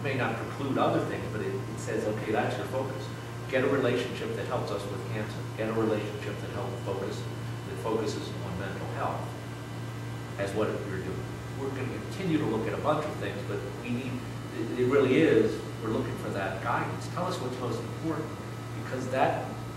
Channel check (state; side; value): identical; both; correlation 1.00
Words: may not preclude other things, but it says, okay, that's your focus. Get a relationship that helps us with cancer. Get a relationship that focuses on mental health. as what you're doing. We're going to continue to look at a bunch of things, but we need, it really is, we're looking for that guidance. Tell us what's most important, because that,